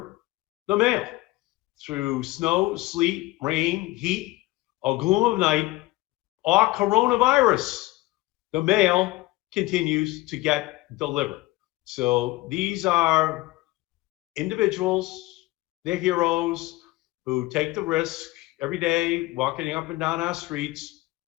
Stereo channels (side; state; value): right; quieter; 19.7 dB